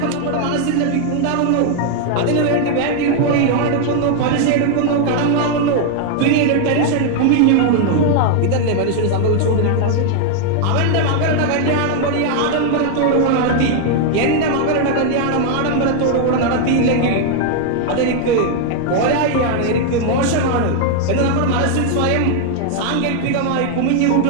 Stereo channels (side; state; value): both; different; correlation 0.00